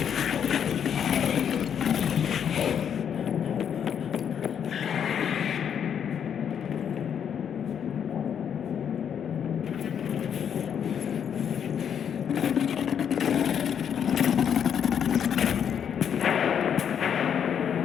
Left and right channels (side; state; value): right; quieter; 8.3 dB